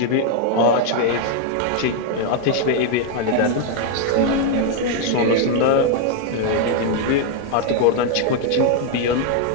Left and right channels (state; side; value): different; both; correlation 0.00